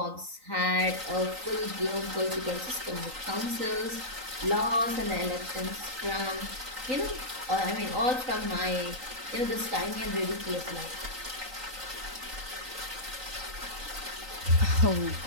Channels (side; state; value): left; late; 3.9 ms